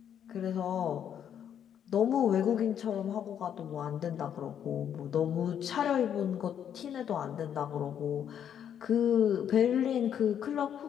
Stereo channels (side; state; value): right; quieter; 9.1 dB